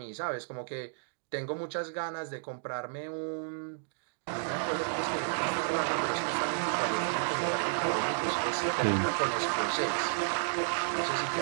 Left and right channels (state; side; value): silent; left; digital silence